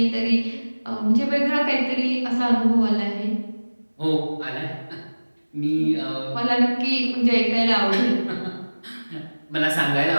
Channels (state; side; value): inverted; both; correlation -1.00